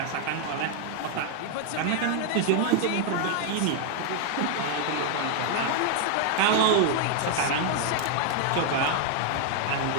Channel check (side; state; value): both; different; correlation 0.00